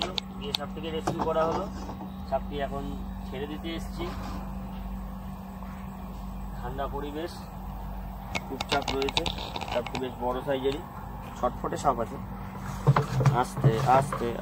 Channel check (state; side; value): identical; both; correlation 1.00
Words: গিয়ে সাপটিকে রেস্কিউ করা হলো। সাপটি এখন ছেড়ে দিতে এসেছি। ঠান্ডা পরিবেশ, চুপচাপ রয়েছে। সাপটি বেশ বড় সাইজেরই, ছটফটে সাপ আছে। আস্তে আস্তে